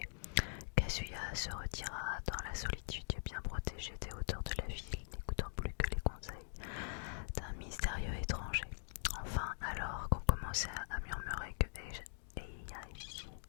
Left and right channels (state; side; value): silent; right; digital silence